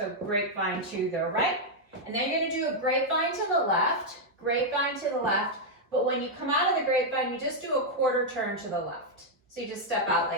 grapevine to the right. And then you're going to do a grapevine to the left, but when you come out of the grapevine, you just do a quarter turn to the left. So you just step out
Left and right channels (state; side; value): normal; both; correlation -0.02